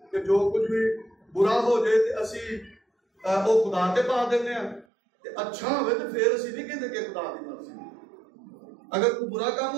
कि जो कुछ भी बुरा हो जाए तो असी वो खुदा के पा देने हैं, अच्छा हो तो फिर असी नहीं कहते कि खुदा की मर्जी। अगर कोई बुरा काम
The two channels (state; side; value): drops out; left; at 4.9 s